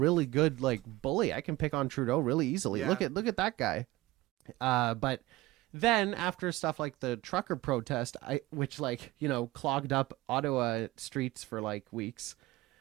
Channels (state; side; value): quieter; left; 18.8 dB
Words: good like bully. I can pick on Trudeau really easily. Yeah. Look at that guy. But then after stuff like the trucker protest, which like, you know, clogged up Ottawa streets for like weeks,